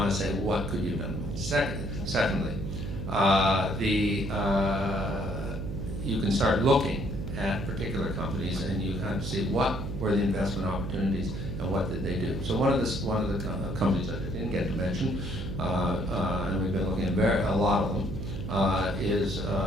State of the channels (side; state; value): right; noise; hum, 5 dB below the sound